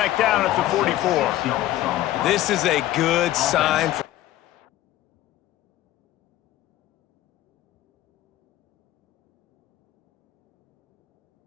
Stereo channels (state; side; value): quieter; right; 14.4 dB